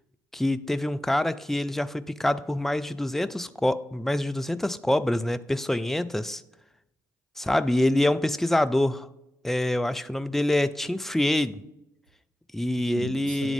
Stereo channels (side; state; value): both; normal; correlation 0.96